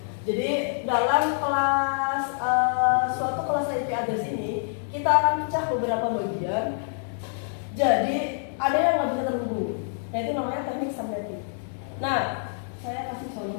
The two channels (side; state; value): right; silent; digital silence